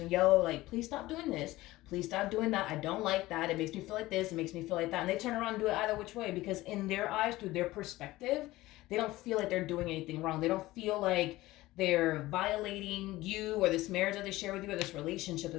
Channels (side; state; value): right; quieter; 18.0 dB